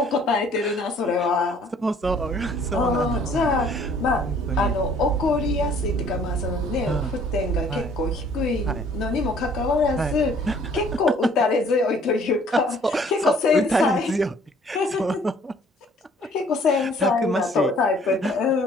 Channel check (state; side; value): normal; both; correlation 0.57